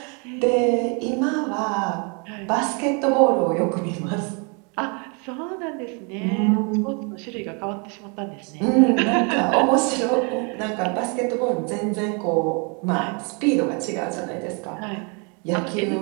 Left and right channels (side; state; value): left; quieter; 34.7 dB